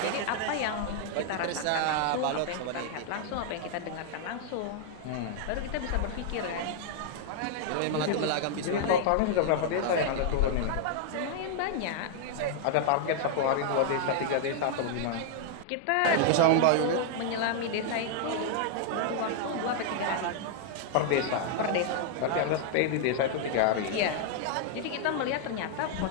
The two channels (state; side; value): different; both; correlation -0.01